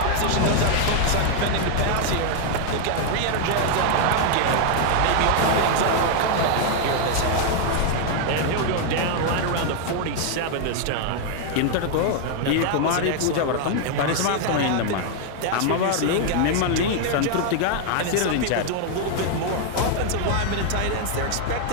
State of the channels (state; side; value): different; both; correlation 0.00